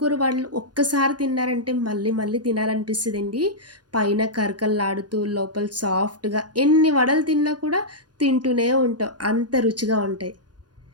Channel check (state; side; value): late; left; 0.69 ms